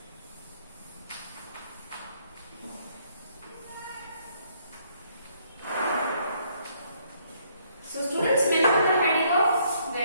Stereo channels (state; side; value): inverted; both; correlation -0.68